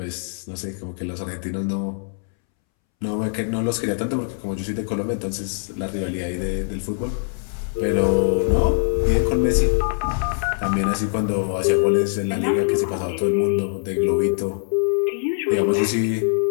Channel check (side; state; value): right; silent; 64 dB below the other